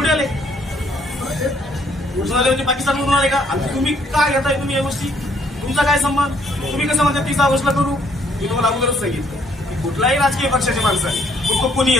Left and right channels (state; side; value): normal; both; correlation 0.66